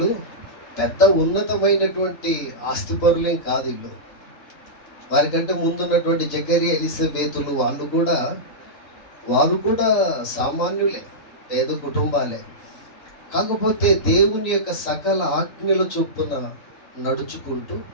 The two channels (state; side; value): late; right; 3.9 ms